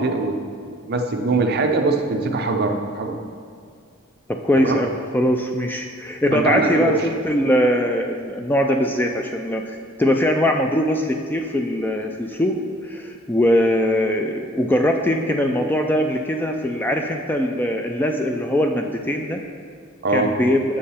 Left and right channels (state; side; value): normal; both; correlation 0.58